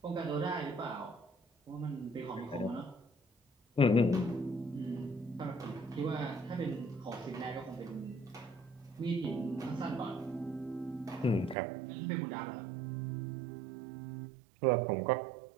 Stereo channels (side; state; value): left; drops out; at 11.6 s